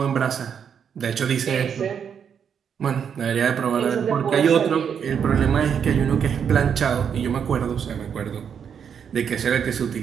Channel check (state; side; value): quieter; left; 7.6 dB